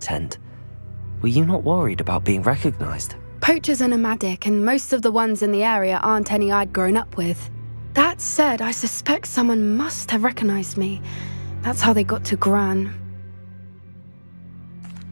Were you not worried about being recognized? Poachers are nomadic, and most of the ones in the area aren't any I'd grown up with. That said, I suspect someone must have recognized me. That's how they got to Gran.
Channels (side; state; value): both; inverted; correlation -1.00